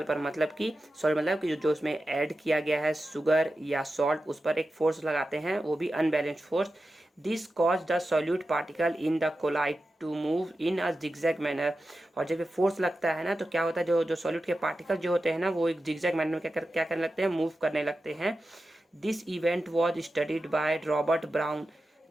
पर। मतलब कि मतलब कि जो उसमें ऐड किया गया है शुगर या सॉल्ट, उस पर एक फोर्स लगाते हैं, वो भी unbalance force. This cause the solute particle in the colloid to move in a zigzag manner. और जब ये फोर्स लगता है ना, तो क्या होता है, जो सॉल्यूट के पार्टिकल जो होते हैं ना, वो एक जिगजैग मैनर में क्या करने लगते हैं, मूव करने लगते हैं। This event was studied by Robert brown.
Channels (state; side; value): normal; both; correlation 0.92